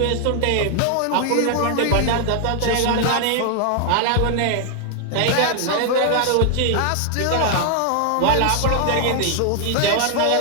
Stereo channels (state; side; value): different; both; correlation 0.00